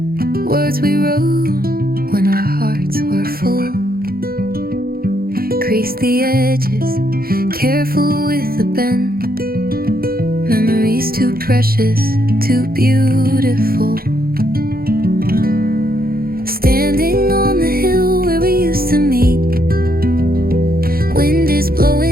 words we wrote when our hearts were full. Crease the edges, careful with the bend. Memories too precious, too beautiful. Standing on the hill where we used to meet, wind is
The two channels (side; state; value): left; late; 0.43 ms